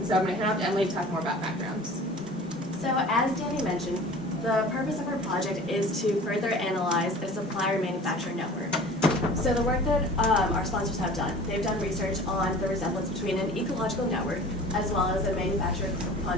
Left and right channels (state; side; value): normal; both; correlation 0.43